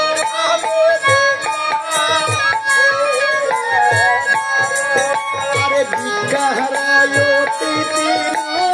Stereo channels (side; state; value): both; identical; correlation 1.00